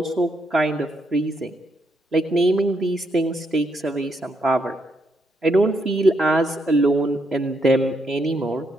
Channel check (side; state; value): both; normal; correlation 0.77